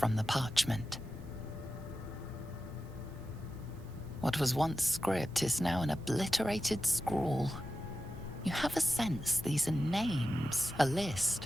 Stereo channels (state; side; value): normal; both; correlation 0.92